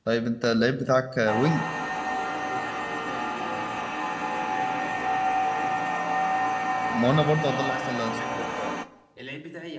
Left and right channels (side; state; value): both; identical; correlation 1.00